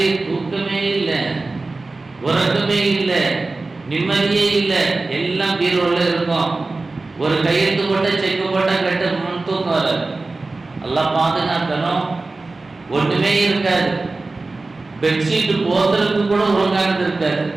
தூக்கமே இல்லை, உறக்கமே இல்லை, நிம்மதியே இல்லை, எல்லாம் பீரோல இருக்கும். ஒரு கையெழுத்து போட்ட செக்கு போட்ட கட்ட முன் தூக்கம் வராது. எல்லாம் பாதுகாக்கணும். ஒன்றுமே இருக்காது. பெட்ஷீட் போத்துறதுக்கு கூட ஒழுங்கானது இருக்காது.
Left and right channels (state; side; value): quieter; left; 3.4 dB